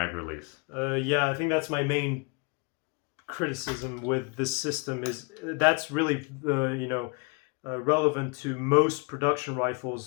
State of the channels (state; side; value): quieter; right; 31.7 dB